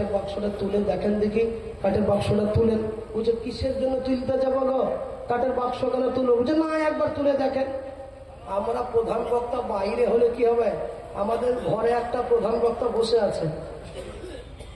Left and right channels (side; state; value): both; identical; correlation 1.00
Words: বাক্সটা তুলে দেখেন দেখি। কাঠের বাক্সটা তুলেন। বুঝে কিসের জন্য তুলতে যাবো গো, কাঠের বাক্স কেন তুলো? বুঝে না, একবার তুলে দেখেন। আমরা প্রধান বক্তা বাইরে হলে কি হবে, আমাদের ঘরে একটা প্রধান বক্তা বসে আছে,